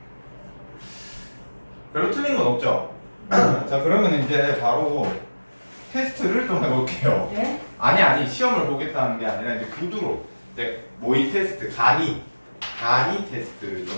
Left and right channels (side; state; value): both; inverted; correlation -1.00